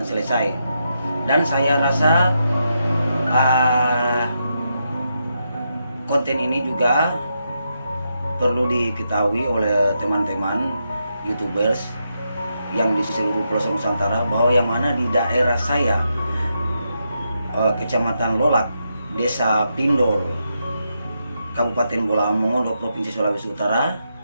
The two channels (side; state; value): both; inverted; correlation -0.83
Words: selesai. Dan saya rasa konten ini juga perlu diketahui oleh teman-teman YouTubers yang di seluruh pelosok Nusantara, bahwa yang mana di daerah saya, Kecamatan Lolak, Desa Pindol, Kabupaten Bolaang Mongondo, Provinsi Sulawesi Utara,